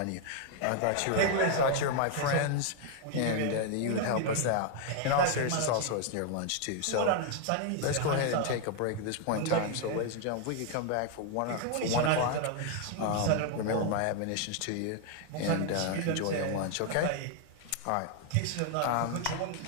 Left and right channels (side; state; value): both; different; correlation 0.00